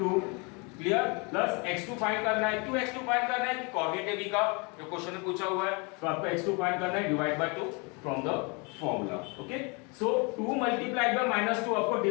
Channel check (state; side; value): quieter; right; 31.0 dB